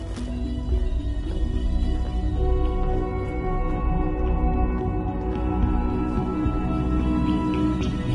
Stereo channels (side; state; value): both; identical; correlation 1.00